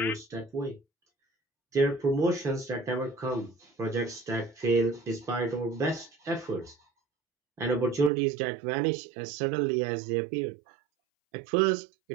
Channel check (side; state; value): left; drops out; at 8.1 s